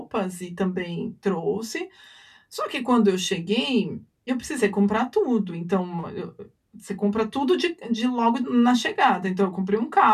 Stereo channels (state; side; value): identical; both; correlation 1.00